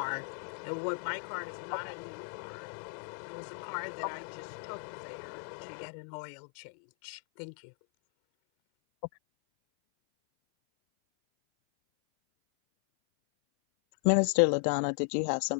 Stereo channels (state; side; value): silent; right; 54 dB below the other